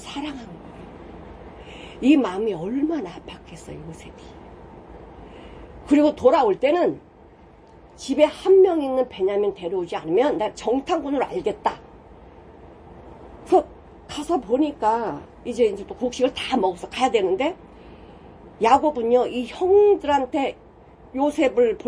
거예요. 이 마음이 얼마나 아팠겠어요, 요셉이. 그리고 돌아올 때는 집에 한 명 있는 베냐민 데려오지 않으면 나 정탐꾼으로 알겠다. 그래서 가서 보니까 이제 또 곡식을 다 먹어서 가야 되는데, 야곱은요, 이 형들한테 요셉을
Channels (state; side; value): identical; both; correlation 1.00